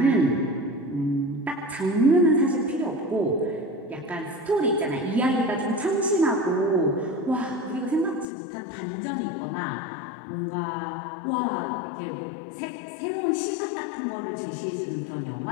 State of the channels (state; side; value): drops out; right; at 8.2 s